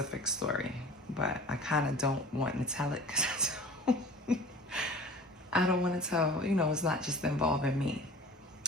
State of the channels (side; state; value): both; normal; correlation 0.42